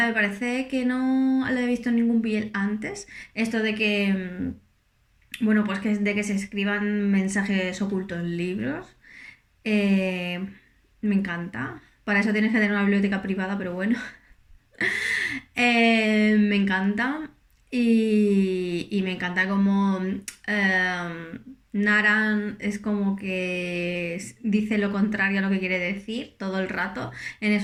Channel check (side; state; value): both; identical; correlation 1.00